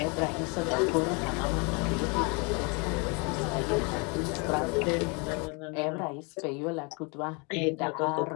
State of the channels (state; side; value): quieter; right; 32.1 dB